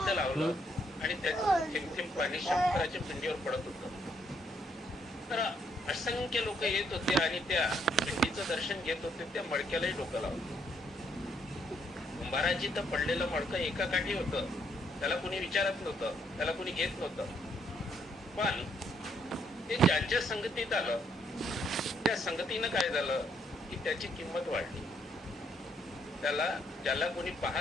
लावलं आणि त्याचं थेंब पाणी शंकराच्या पिंडीवर पडत होतं. तर असंख्य लोक येत होते आणि त्या पिंडीचं दर्शन घेत होते. त्या मडक्यालाही डोकं लावलं. कुंभाराची तर पडलेलं मडकं एका काठी होतं, त्याला कोणी विचारत नव्हतं, त्याला कोणी घेत नव्हतं. पण ते ज्यांच्या संगतीत आलं, त्या संगतीनं काय झालं की त्याची किंमत वाढली. ज्याला कोणी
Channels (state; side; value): normal; both; correlation 0.71